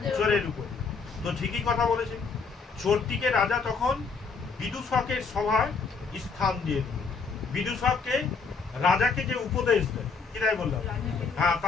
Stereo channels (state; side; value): quieter; right; 4.9 dB